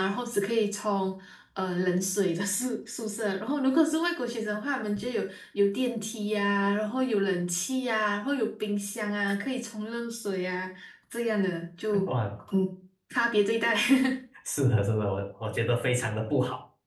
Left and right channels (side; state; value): both; identical; correlation 1.00